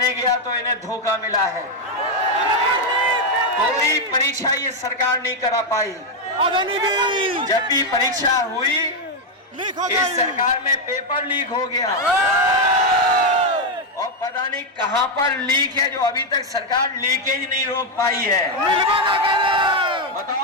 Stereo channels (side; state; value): both; normal; correlation 0.03